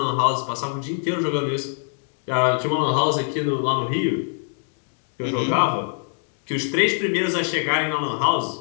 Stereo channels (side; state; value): right; silent; 63 dB below the other